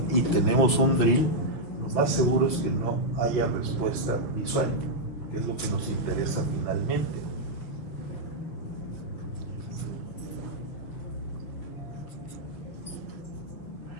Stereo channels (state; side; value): late; right; 6.7 ms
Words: y tenemos un DRIL, lo más seguro es que no haya respuesta visual, que es lo que nos interesa finalmente.